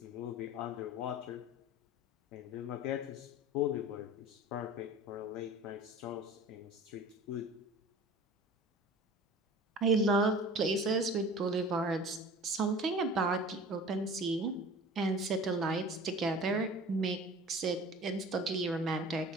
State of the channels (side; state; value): both; normal; correlation 0.41